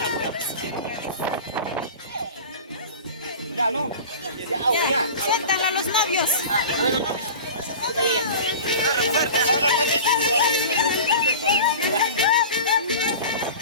Ya, no. Ya, siéntan a los novios.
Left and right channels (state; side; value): inverted; both; correlation -0.35